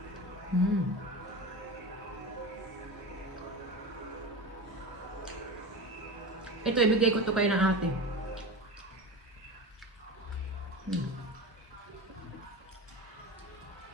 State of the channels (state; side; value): normal; both; correlation 0.27